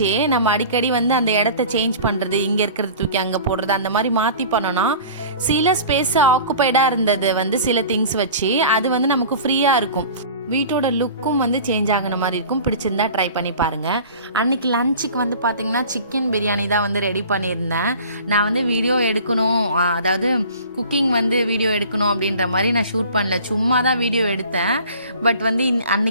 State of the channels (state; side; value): inverted; both; correlation -0.42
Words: நம்ம அடிக்கடி வந்து அந்த இடத்த சேஞ்ச் பண்ணுறது, இங்கே இருக்கிறத தூக்கி அங்கே போடுறது, அந்த மாதிரி மாற்றி பண்ணோன்னா சில ஸ்பேஸ் ஆக்குப்பைடாக இருந்தது வந்து சில திங்ஸ் வச்சு அது வந்து நமக்கு ஃப்ரீயாக இருக்கும். வீட்டோட லுக்கும் வந்து சேஞ்ச் ஆகின மாதிரி இருக்கும். பிடிச்சிருந்தா ட்ரை பண்ணி பாருங்கள். அன்றைக்கி லஞ்சுக்கு வந்து பார்த்திங்கன்னா சிக்கன் பிரியாணி தான் வந்து ரெடி பண்ணியிருந்தேன். நான் வந்து வீடியோ எடுக்கணும், அதாவது குக்கிங் வந்து வீடியோ எடுக்கணும் அப்படின்ற மாதிரி நான் ஷூட் பண்ணல, சும்மா தான் வீடியோ எடுத்தேன். பட் வந்து